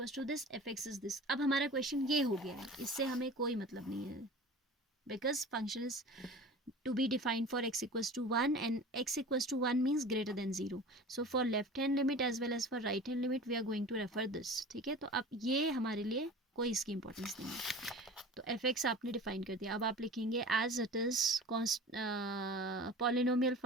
to this F x is this. अब हमारा question ये हो गया है, इससे हमें कोई मतलब नहीं है, because function is to be defined for x equals to 1 and x equals to 1 means greater than 0. So for left hand limit as well as for right hand limit we are going to refer this. ठीक है, तो अब ये हमारे लिए कोई इसकी importance नहीं है. तो fx आपने डिफाइन कर दिया. अब आप लिखेंगे as it is polynomial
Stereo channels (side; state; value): both; normal; correlation 0.38